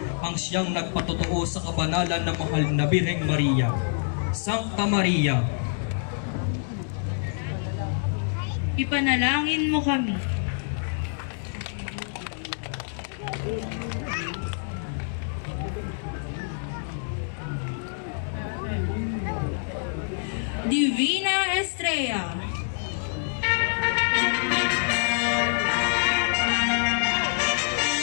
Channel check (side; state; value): right; silent; digital silence